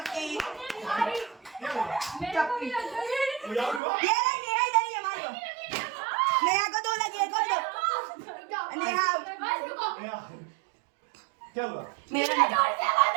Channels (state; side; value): drops out; left; at 3.8 s